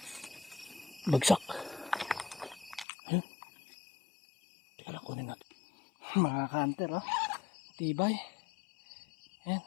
Bagsak. Ayun. Teka lang, kunin natin. Mga ka-hunter, tibay. Ayan,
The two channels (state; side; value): drops out; right; at 2.9 s